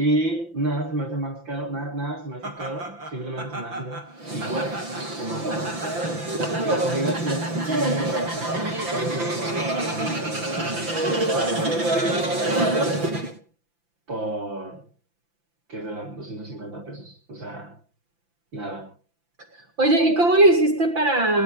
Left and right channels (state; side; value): late; left; 5.9 ms